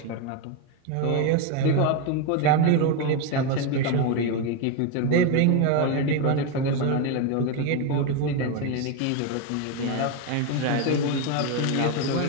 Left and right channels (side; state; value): both; different; correlation 0.03